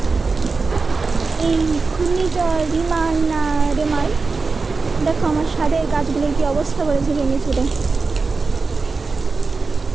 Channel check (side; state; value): left; quieter; 4.2 dB